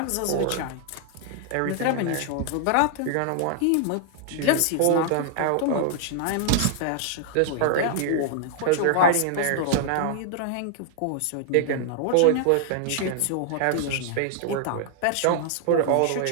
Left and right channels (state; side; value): different; both; correlation -0.01